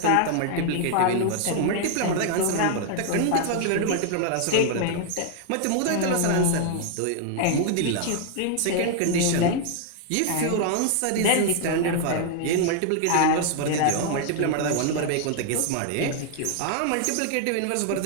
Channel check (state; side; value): different; both; correlation 0.00